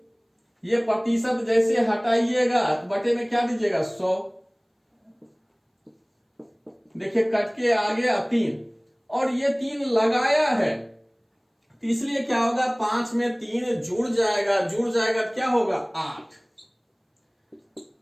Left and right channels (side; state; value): both; identical; correlation 1.00